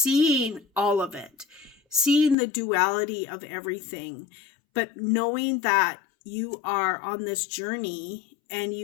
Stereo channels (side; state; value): right; drops out; at 2.4 s